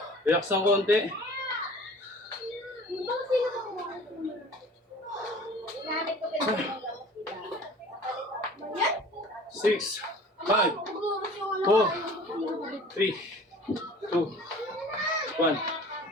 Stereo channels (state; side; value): normal; both; correlation 0.45